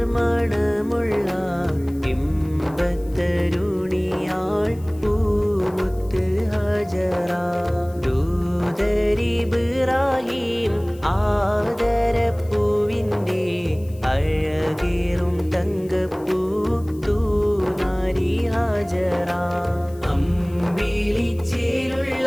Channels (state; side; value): noise; left; hiss, 26 dB below the sound